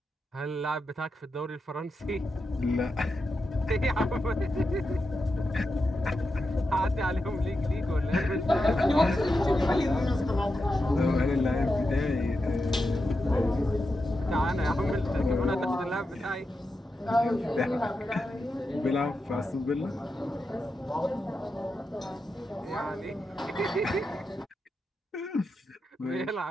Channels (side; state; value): both; normal; correlation 0.88